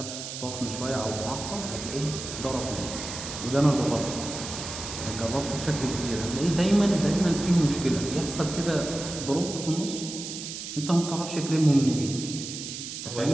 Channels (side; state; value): right; noise; hiss, 8 dB below the sound